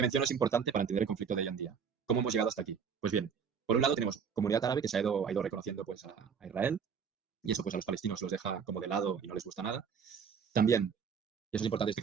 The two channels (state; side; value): quieter; left; 6.7 dB